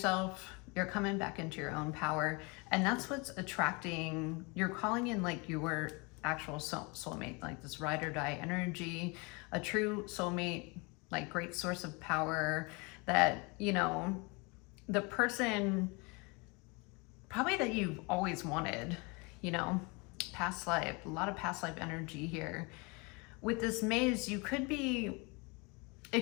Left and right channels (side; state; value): right; quieter; 29.0 dB